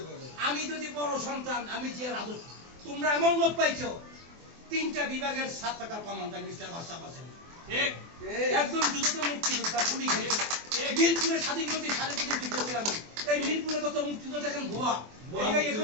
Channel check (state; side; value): late; left; 24 ms